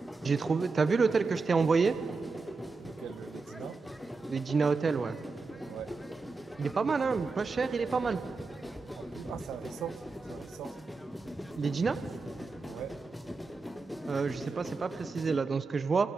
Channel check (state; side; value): quieter; left; 4.2 dB